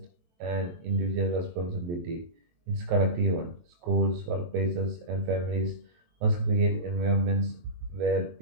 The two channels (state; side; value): late; left; 23 ms